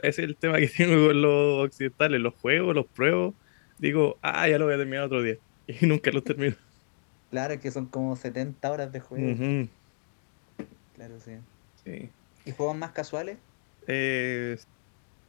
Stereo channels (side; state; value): right; silent; digital silence